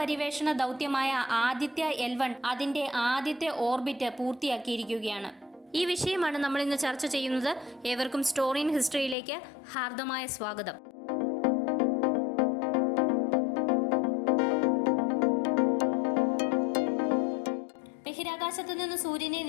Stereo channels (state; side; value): drops out; right; at 9.2 s